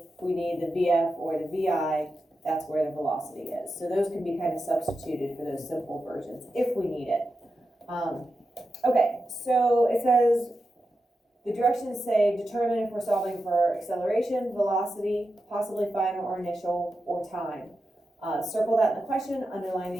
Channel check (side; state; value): both; normal; correlation 0.89